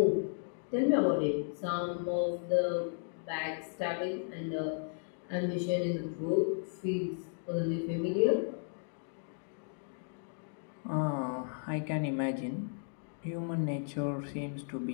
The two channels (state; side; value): silent; right; digital silence